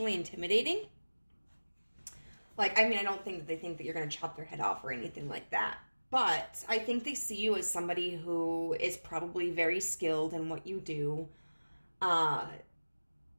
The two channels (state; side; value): inverted; both; correlation -1.00